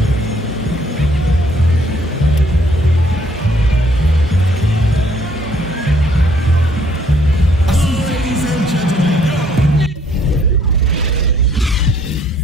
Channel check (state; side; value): normal; both; correlation 0.64